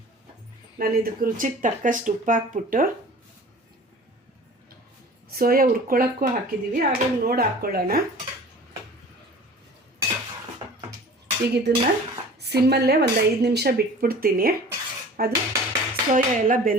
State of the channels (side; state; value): both; normal; correlation 0.43